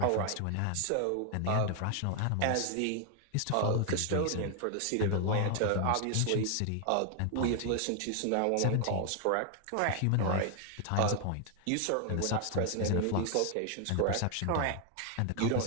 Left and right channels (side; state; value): both; different; correlation 0.00